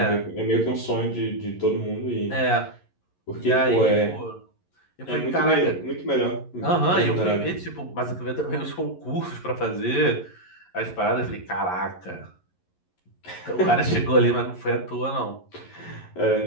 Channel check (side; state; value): right; late; 11 ms